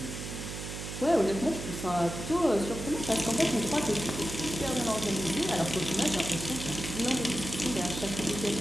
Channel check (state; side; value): noise; right; hum, 7 dB below the sound